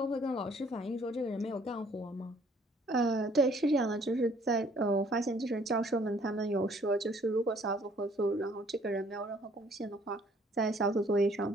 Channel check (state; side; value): normal; both; correlation 0.60